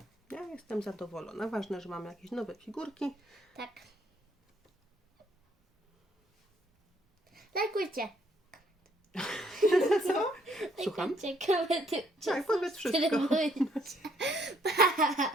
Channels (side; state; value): both; normal; correlation 0.67